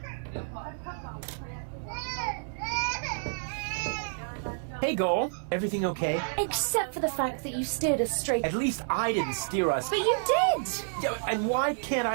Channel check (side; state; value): left; silent; digital silence